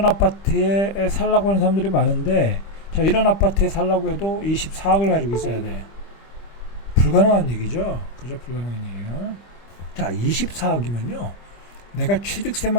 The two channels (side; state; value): right; late; 25 ms